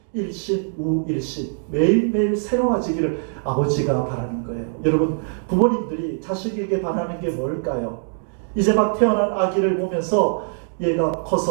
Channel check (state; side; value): silent; left; digital silence